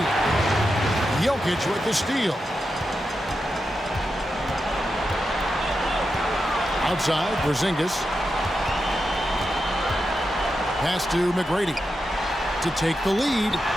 Jokic with the steal. Outside, Porzingis. Pass to McGrady to take the lead.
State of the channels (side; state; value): both; normal; correlation 0.88